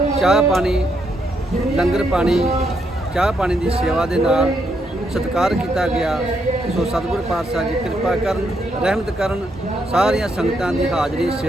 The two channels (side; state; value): both; normal; correlation 0.77